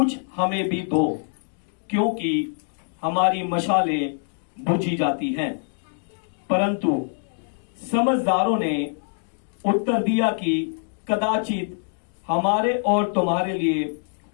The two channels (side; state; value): right; silent; 62 dB below the other